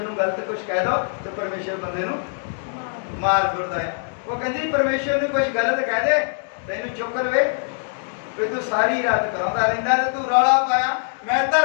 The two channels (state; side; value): silent; right; digital silence